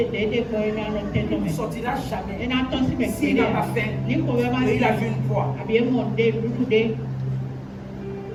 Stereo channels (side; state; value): both; identical; correlation 1.00